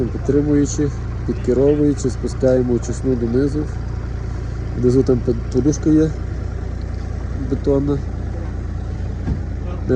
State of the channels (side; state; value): both; identical; correlation 1.00